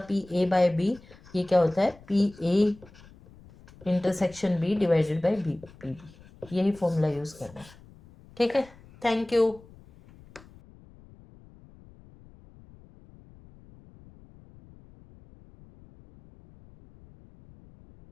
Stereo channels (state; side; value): noise; left; rumble, 24 dB below the sound